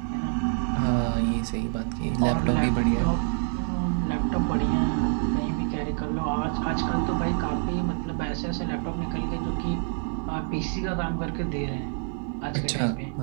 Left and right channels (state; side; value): silent; left; 60 dB below the other